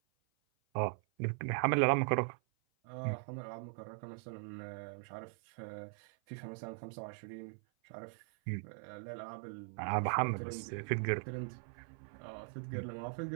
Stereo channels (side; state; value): left; silent; 51 dB below the other